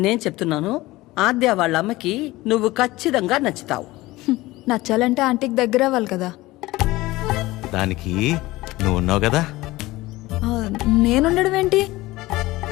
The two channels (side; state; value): right; quieter; 19.1 dB